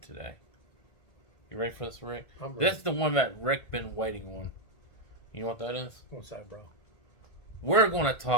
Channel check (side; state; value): right; late; 1.5 ms